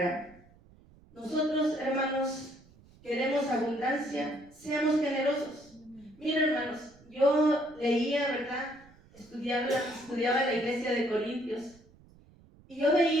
Nosotros, hermanos, queremos abundancia, seamos generosos. Miren, hermanos, yo leía, ¿verdad?, estudiaba la iglesia de Corintios, y yo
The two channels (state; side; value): noise; right; rumble, 26 dB below the sound